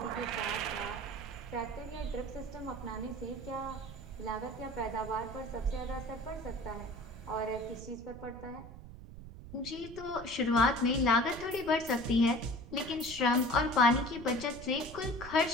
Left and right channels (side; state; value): right; noise; rumble, 14 dB below the sound